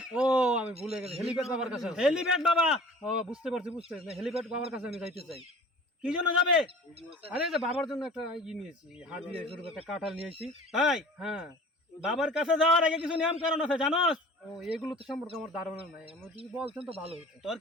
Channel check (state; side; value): normal; both; correlation 0.44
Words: ও আমি ভুলে গেছি, হেলিপ্যাড বাবার কাছে। হেলিপ্যাড বাবা। ও বুঝতে পারছি। হেলিপ্যাড বাবার কাছে আমি যাইতে চাই। কি জন্য যাবে? আরে যে বাবার জন্য একটা নিয়েছি, হাদিয়া স্বরূপ একটা কাঁঠাল নিয়েছি। তাই? হ্যাঁ। বাবার কাছে যাওয়ার আগে কিছু নিয়ম কারণ আছে জানোস? ও এগুলো তো সম্পর্কে আমার ধারণা নাই, আমার যদি বলতেন তো ভালো হতো। তোর